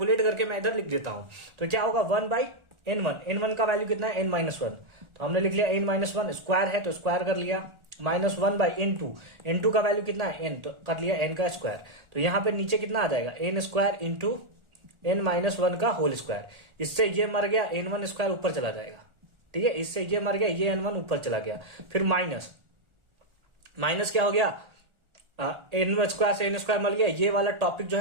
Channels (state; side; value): late; left; 1.4 ms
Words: करके मैं इधर लिख देता हूं। तो क्या होगा? 1/n1 का वैल्यू कितना है? n-1। तो हमने लिख लिया n-1, स्क्वायर है तो स्क्वायर कर लिया, माइनस 1/n2 का वैल्यू कितना है? n, तो कर लिया n का स्क्वायर। तो यहां पे नीचे कितना आ जाएगा? n स्क्वायर इंटू n-1 का होल स्क्वायर। इससे ये मर गया, n1 स्क्वायर ऊपर चला जाएगा। ठीक है, इससे ये मर गया, ये n1 ऊपर चला गया, फिर माइनस क्या हो गया? n स्क्वायर से n स्क्वायर मिल गया, ये वाला टॉपिक जो